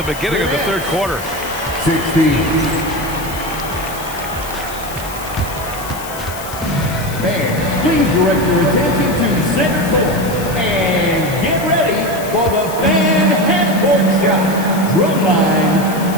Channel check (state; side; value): noise; left; hiss, 13 dB below the sound